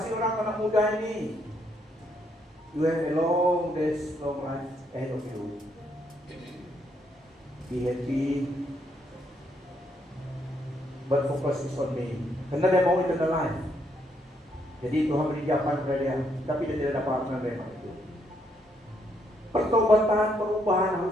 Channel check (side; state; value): both; normal; correlation 0.74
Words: orang anak muda ini. You have a long days, long life ahead of you. Be happy, but focus is on me. Karena dia mau eternal life. Jadi Tuhan beri jawaban kepada dia, tapi dia tidak dapat menerima itu. Pertobatan, perubahan